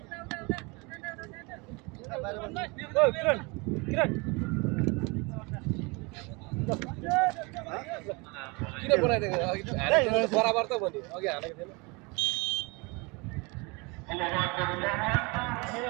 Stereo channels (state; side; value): quieter; left; 27.9 dB